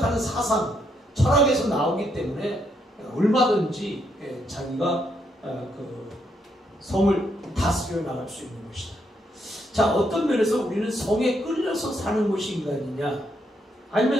사상, 철학에서 나오기 때문에 얼마든지 자기가 그 성을 다스려 나갈 수 있는 것이다. 자, 어떤 면에서 우리는 성에 끌려서 사는 것이 인간이냐,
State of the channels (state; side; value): normal; both; correlation 0.76